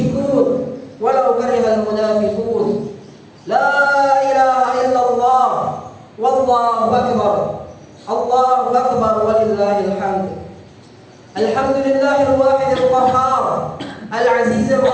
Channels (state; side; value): identical; both; correlation 1.00